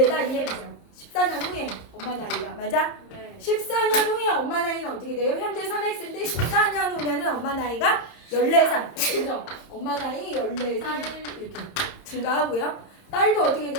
이해되죠? 14년 후에 엄마 나이가 맞아? 네. 14년 후에 엄마 나이는 어떻게 돼요? 현재 3X인데 14년 후면은 엄마 나이가 14살 그죠? 엄마 나이 14살 이렇게 증가하고요. 딸도 어떻게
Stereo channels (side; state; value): right; late; 30 ms